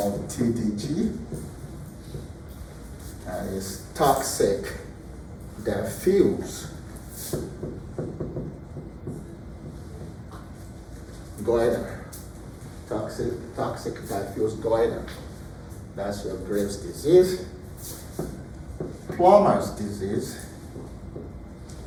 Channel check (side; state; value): both; identical; correlation 1.00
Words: TDG. That is toxic diffuse goiter. Toxic diffuse goiter. That's your Graves' disease. Plummer's disease